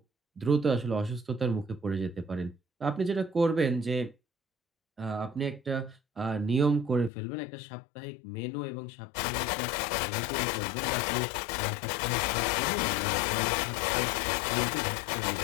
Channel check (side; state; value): right; drops out; at 7.1 s